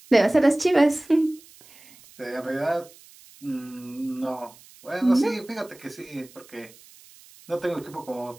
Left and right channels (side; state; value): right; noise; hiss, 24 dB below the sound